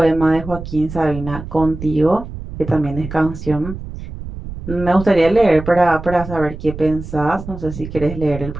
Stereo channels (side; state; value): right; noise; rumble, 10 dB below the sound